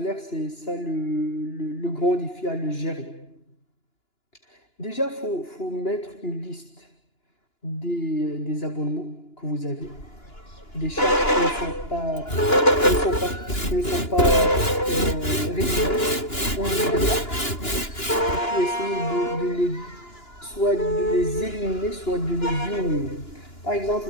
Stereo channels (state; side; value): late; right; 2.9 ms